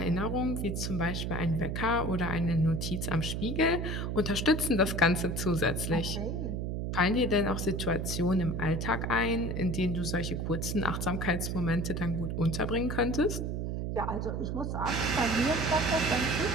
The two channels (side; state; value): right; noise; hum, 2 dB below the sound